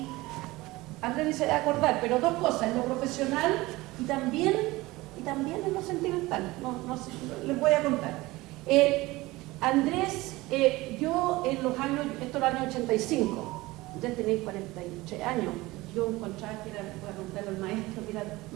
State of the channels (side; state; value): left; quieter; 20.2 dB